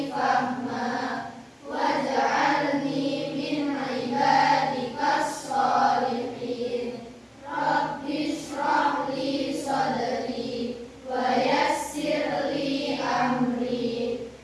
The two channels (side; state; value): both; identical; correlation 1.00